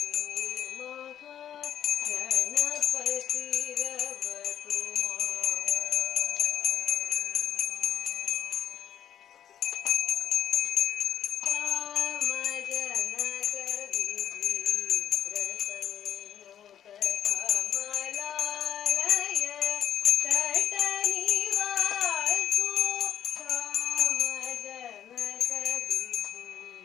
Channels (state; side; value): quieter; right; 10.1 dB